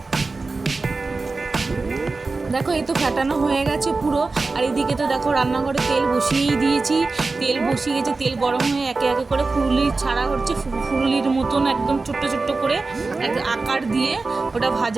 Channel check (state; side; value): quieter; left; 3.8 dB